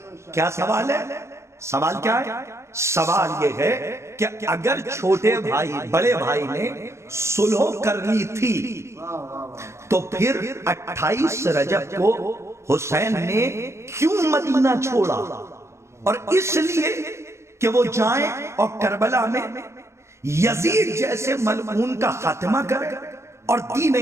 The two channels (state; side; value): late; left; 0.13 ms